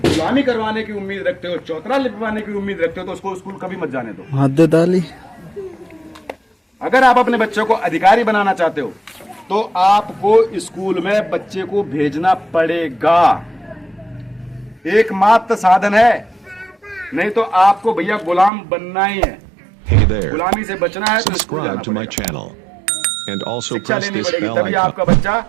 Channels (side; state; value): left; drops out; at 18.5 s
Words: करवाने की उम्मीद रखते हो, चौतरा लिपवाने की उम्मीद रखते हो, तो उसको स्कूल कभी मत जाने दो। हद डाली। अगर आप अपने बच्चों को अधिकारी बनाना चाहते हो तो आपको स्कूल में बच्चे को भेजना पड़ेगा। एकमात्र साधन है, नहीं तो आपको भैया गुलाम बनना ही है। Hey there. गुलामी से बचना है तो स्कूल जाना Subscribe to my पड़ेगा। channel. And also शिक्षा press लेनी this पड़ेगी, bell तभी icon. आपका बच्चा